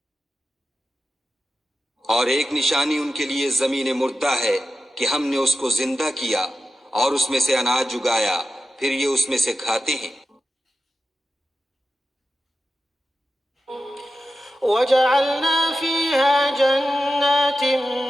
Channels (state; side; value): normal; both; correlation 0.92